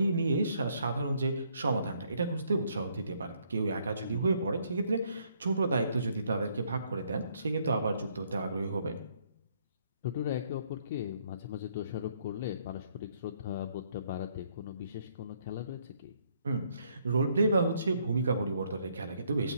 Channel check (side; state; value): both; inverted; correlation -0.69